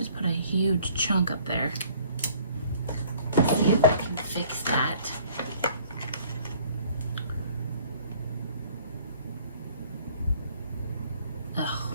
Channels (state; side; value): inverted; both; correlation -0.56